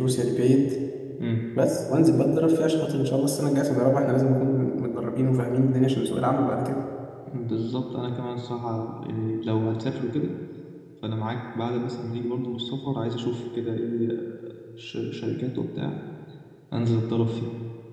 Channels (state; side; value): identical; both; correlation 1.00